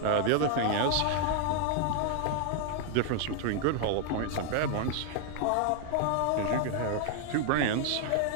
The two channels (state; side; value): different; both; correlation 0.00